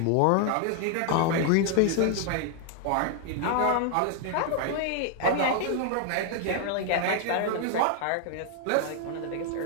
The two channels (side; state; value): both; different; correlation 0.00